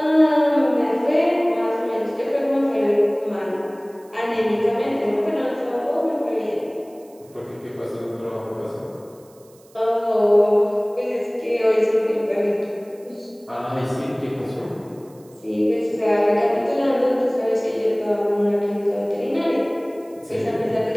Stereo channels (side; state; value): right; noise; hiss, 29 dB below the sound